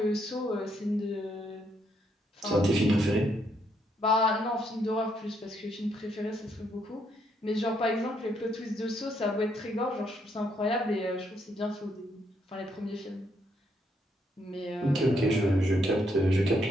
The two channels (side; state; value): both; normal; correlation 0.74